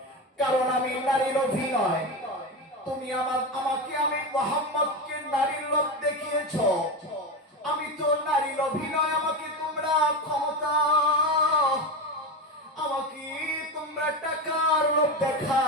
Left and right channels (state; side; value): normal; both; correlation 0.18